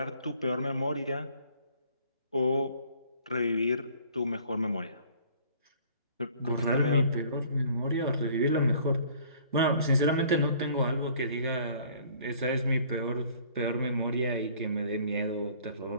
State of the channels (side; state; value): both; inverted; correlation -0.55